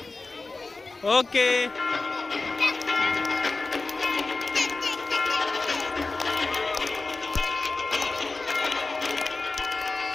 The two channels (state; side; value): quieter; right; 3.6 dB